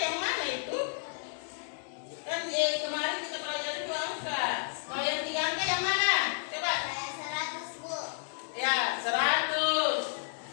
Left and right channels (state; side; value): silent; right; digital silence